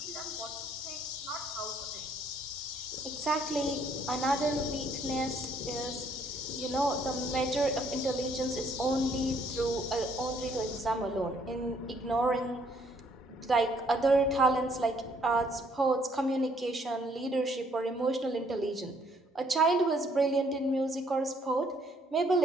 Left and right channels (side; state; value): both; normal; correlation 0.66